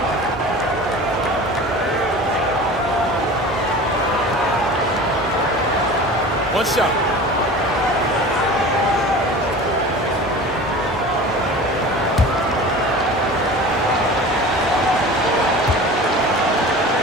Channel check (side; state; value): both; normal; correlation 0.37